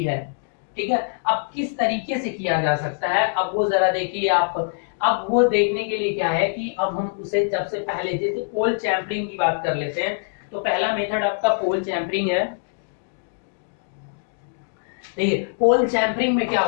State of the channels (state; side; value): silent; right; digital silence